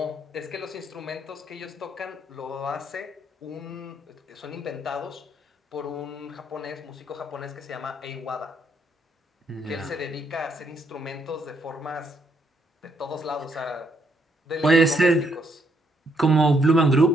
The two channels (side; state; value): both; normal; correlation 0.73